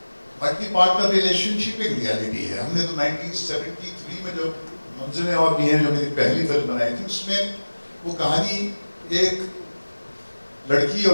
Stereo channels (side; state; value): both; inverted; correlation -1.00